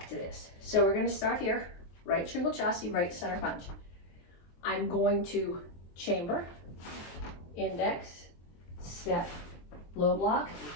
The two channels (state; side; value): late; right; 23 ms